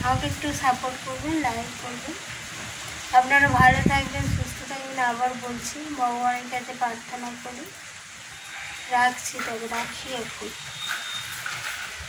আমাকে একটু সাপোর্ট করবেন, লাইক করবেন। আপনারা ভালো থাকবেন, সুস্থ থাকবেন। আবার বলছি, ভগবানের কাছে প্রার্থনা করি। রাখছি, তবে রাখি এখন।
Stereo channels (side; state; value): both; identical; correlation 1.00